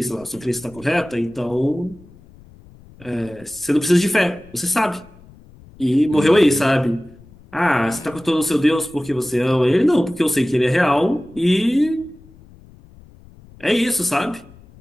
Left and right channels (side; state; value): left; noise; rumble, 24 dB below the sound